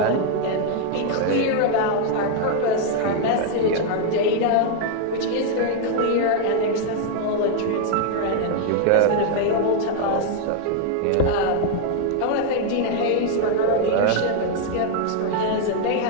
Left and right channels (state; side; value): different; both; correlation 0.00